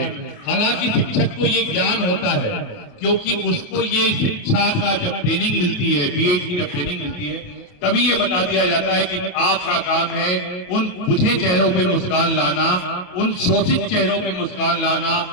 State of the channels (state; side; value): late; right; 28 ms